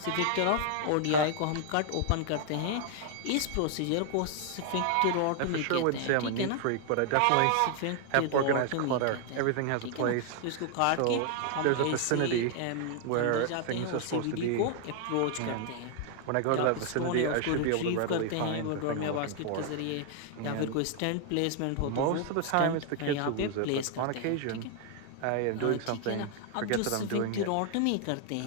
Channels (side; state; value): both; different; correlation 0.00